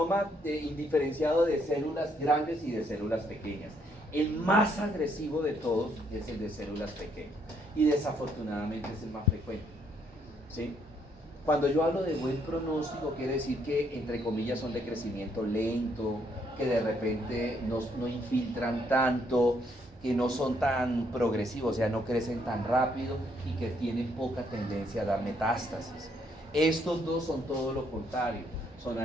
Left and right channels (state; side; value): normal; both; correlation 0.71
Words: indiferenciado de células grandes y de células pequeñas. El más agresivo de todos es el de células pequeñas y desafortunadamente es el más frecuente, ¿sí? Cuando yo hablo de buen pronóstico quiere decir que entre comillas son de crecimiento lento, que de repente no infiltran tanto, que no son tan progresivos, o sea, no crecen tan rápido y que tienen poca tendencia a dar metástasis. Estos 2 son todo lo contrario, son